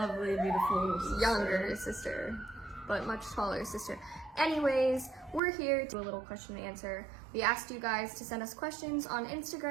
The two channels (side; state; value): left; drops out; at 5.4 s